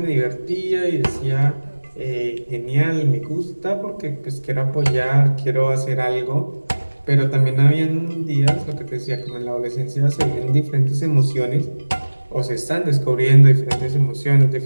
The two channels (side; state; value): both; inverted; correlation -1.00